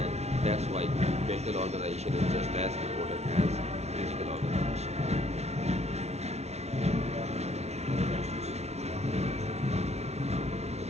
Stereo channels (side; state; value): left; late; 0.31 ms